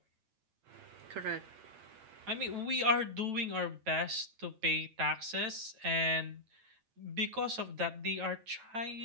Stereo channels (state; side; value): late; left; 9.0 ms